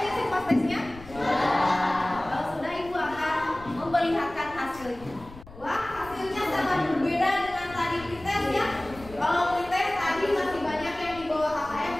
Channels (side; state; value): left; noise; rumble, 19 dB below the sound